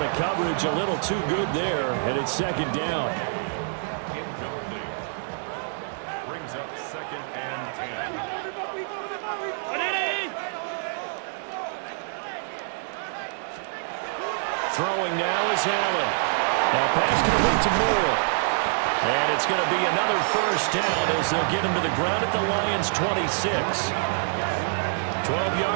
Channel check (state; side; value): silent; left; 60 dB below the other